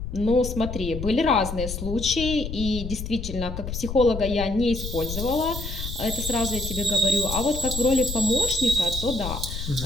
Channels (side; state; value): left; noise; rumble, 7 dB below the sound